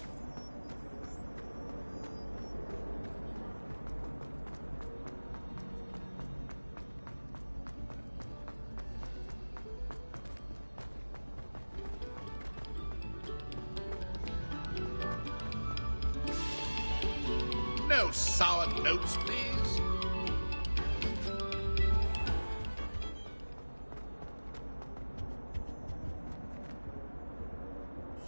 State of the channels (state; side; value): inverted; both; correlation -1.00